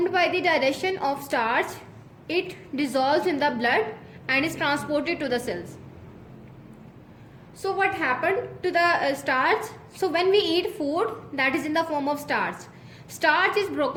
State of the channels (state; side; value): identical; both; correlation 1.00